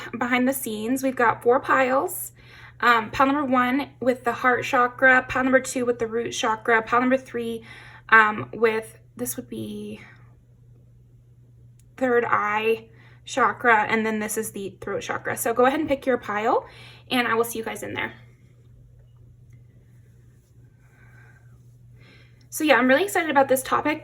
behind the scenes. We've got 4 piles. Pile number 1 with the heart chakra, pile number 2 with the root chakra, pile number 3 with, this would be third eye chakra, and then this is the throat chakra. So go ahead and pick your pile, and I will see you guys in there. So yeah, I'm really excited about this topic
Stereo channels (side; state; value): both; identical; correlation 1.00